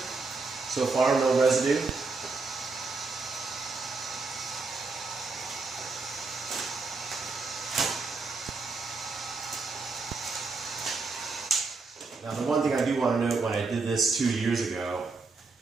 far, no residue. Now the one thing I do want to note, when I did this 2 years ago,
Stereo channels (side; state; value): left; quieter; 4.1 dB